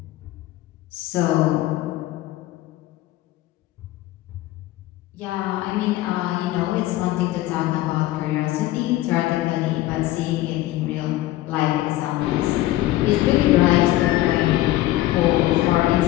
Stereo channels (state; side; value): quieter; right; 16.1 dB